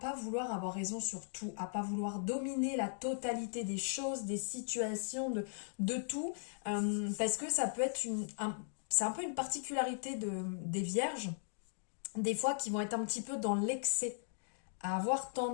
vouloir avoir raison sur tout, à pas vouloir dominer la totalité des choses, des situations, de tout, parce que ça peut être c'est un peu une particularité des vierges, des fois qui vont être un petit peu dans l'excès, à avoir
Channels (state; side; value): silent; right; digital silence